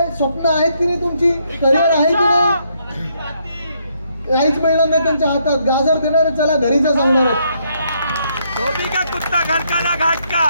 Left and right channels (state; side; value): inverted; both; correlation -0.73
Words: स्वप्न आहेत की नाही, तुमची करिअर आहे की नाही? काहीच मिळणार नाही त्यांच्या हातात. गाजर देणार, चला घरी जा सांगणार.